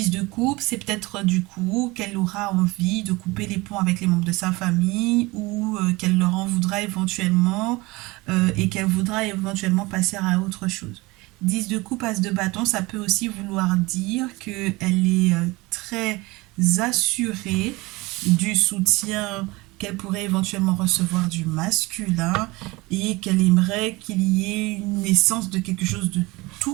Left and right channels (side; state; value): left; quieter; 22.7 dB